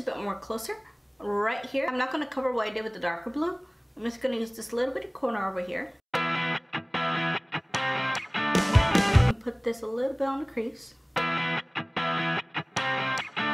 bit more closer, right here. I'm not going to cover what I did with the darker blue. I'm just going to use this little bit of corner over here. And put this a little bit on the crease.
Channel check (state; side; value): identical; both; correlation 1.00